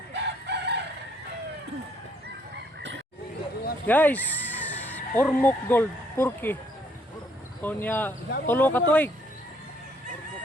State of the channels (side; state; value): both; normal; correlation 0.67